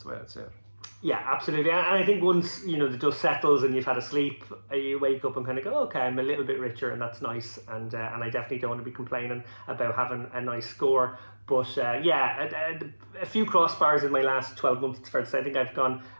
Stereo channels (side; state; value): both; inverted; correlation -1.00